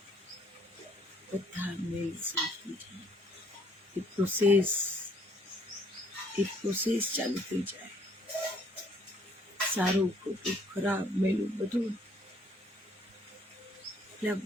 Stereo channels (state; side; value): normal; both; correlation 0.63